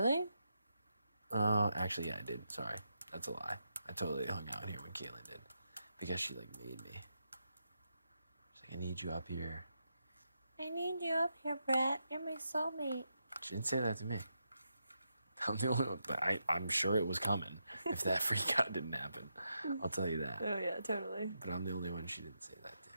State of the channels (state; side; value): inverted; both; correlation -0.84